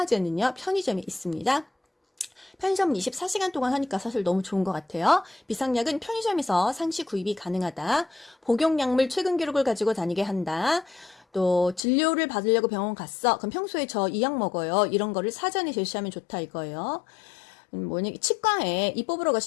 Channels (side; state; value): right; drops out; at 11.9 s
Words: 편의점에 있습니다. 편의점 24시간 동안 하니까 사실 너무 좋은 것 같아요. 비상약은 편의점에서 상시 구입이 가능하다. 복용약물 최근 기록을 가지고 다니게 한다. 또 진료를 받으려고 병원 갔어. 그럼 평소에 저 이 약 먹어요. 이런 거를 사전에 제시하면 좋다 이거예요. 치과에 이 뽑으러